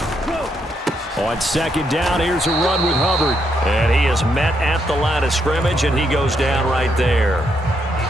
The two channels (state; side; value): normal; both; correlation 0.77